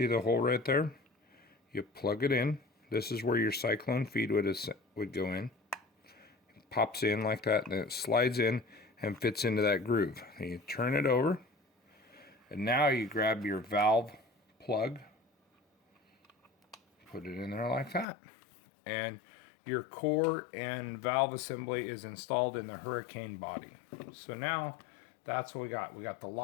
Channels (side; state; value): right; drops out; at 18.1 s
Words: the hole right there? You plug it in. This is where your Cyclone feed would go in. It pops in like that, and then it slides in, and fits into that groove. And you turn it over, and now you grab your valve plug, put it in there like that, and your core and valve assembly is installed in the Hurricane body. So now that's what we got. We got the